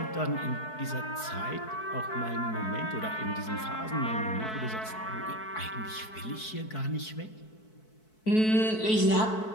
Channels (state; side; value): late; right; 4.6 ms